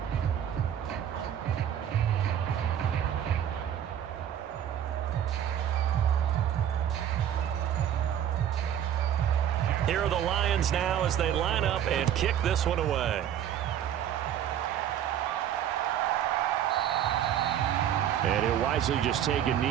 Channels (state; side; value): quieter; left; 10.0 dB